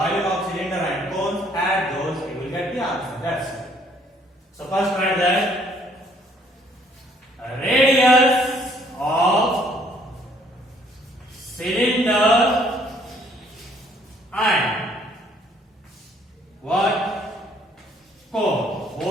of cylinder and cones. Add those, you will get the answer. That's it. So first write that radius of cylinder and what? Cone.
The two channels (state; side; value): normal; both; correlation 0.63